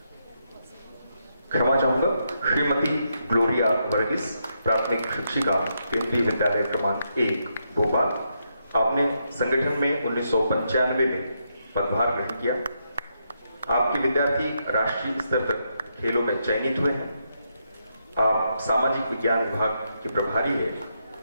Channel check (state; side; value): inverted; both; correlation -0.81